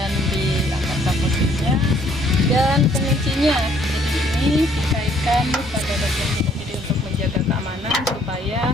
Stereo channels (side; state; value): both; normal; correlation 0.63